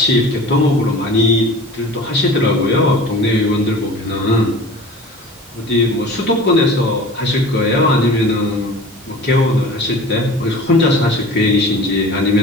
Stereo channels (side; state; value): both; normal; correlation 0.39